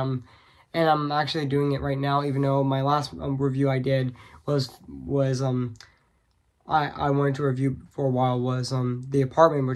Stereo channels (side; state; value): both; identical; correlation 1.00